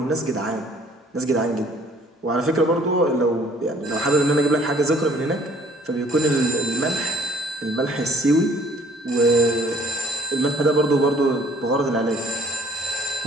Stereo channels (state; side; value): normal; both; correlation 0.55